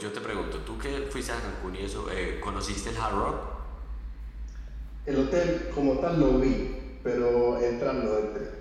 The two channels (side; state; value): both; identical; correlation 1.00